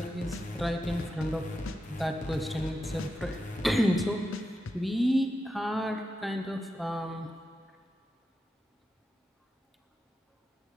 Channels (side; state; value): both; normal; correlation 0.88